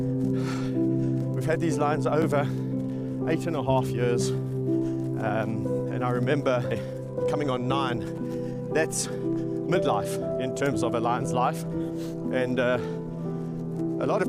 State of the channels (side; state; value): both; identical; correlation 1.00